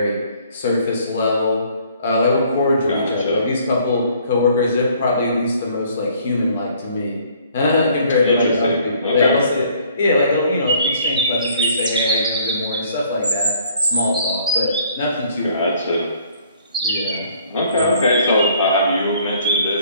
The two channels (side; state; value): both; inverted; correlation -0.60